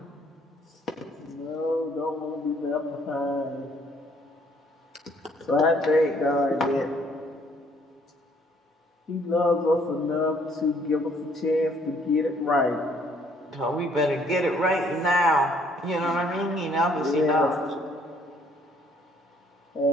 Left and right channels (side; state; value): both; normal; correlation 0.64